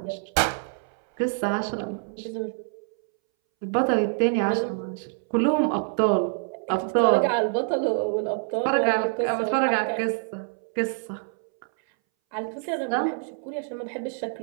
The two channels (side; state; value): left; silent; 61 dB below the other